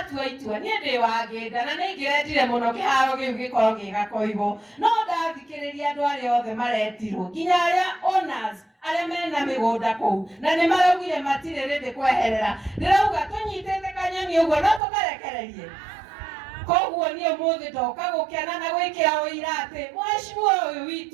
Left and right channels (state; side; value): drops out; left; at 14.8 s